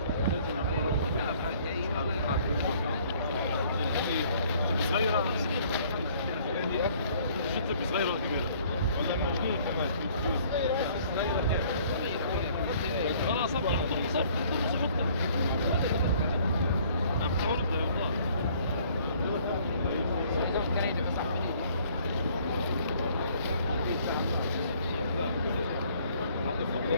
صغيرة شفت صغيرة ولا كبيرة؟ والله موجود كمان. خلاص ابدا حط المصاب حط عم تعرض والله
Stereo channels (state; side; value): inverted; both; correlation -0.59